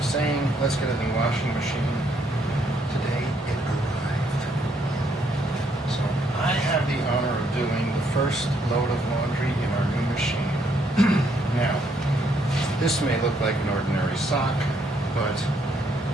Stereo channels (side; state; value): both; normal; correlation 0.71